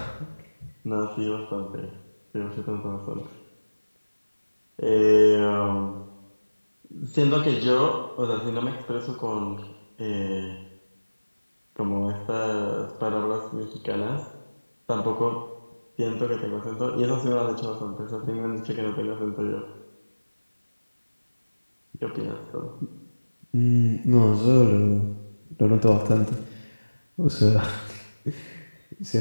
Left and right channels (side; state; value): both; inverted; correlation -1.00